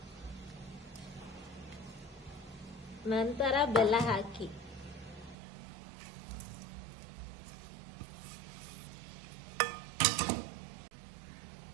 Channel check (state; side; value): drops out; left; at 5.4 s